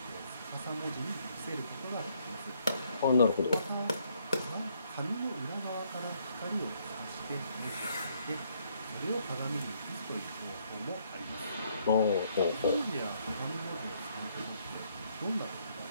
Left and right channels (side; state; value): both; inverted; correlation -0.70